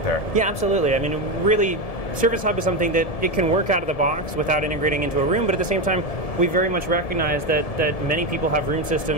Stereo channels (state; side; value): late; right; 1.7 ms